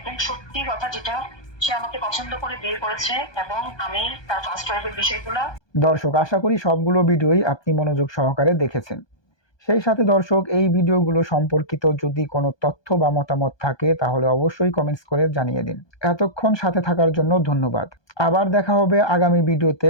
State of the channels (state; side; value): late; right; 1.2 ms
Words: সত্যি কথা যেটা, সে আমাকে পছন্দ করে বিয়ে করেছে এবং আমি তার ফার্স্ট ওয়াইফের বিষয়গুলো। দর্শক, আশা করি সবগুলো ভিডিওই আপনি মনোযোগ সহকারে দেখেছেন। সেই সাথে দর্শক, এই ভিডিওগুলো সম্পর্কিত যদি কোনো তথ্য বা মতামত থাকে তাহলে অবশ্যই কমেন্টস করে জানিয়ে দিন। এতক্ষণ সাথে থাকার জন্য ধন্যবাদ। আবার দেখা হবে আগামী ভিডিওতে